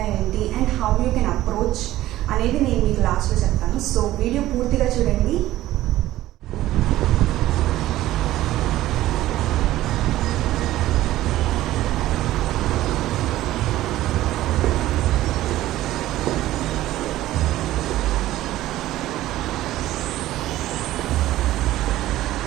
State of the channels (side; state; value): left; quieter; 15.1 dB